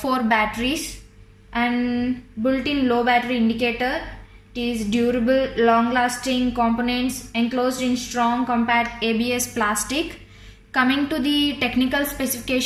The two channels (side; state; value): both; identical; correlation 1.00